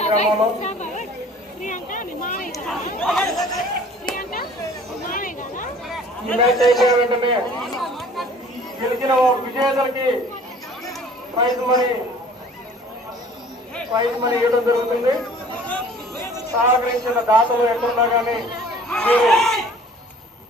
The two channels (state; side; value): normal; both; correlation 0.50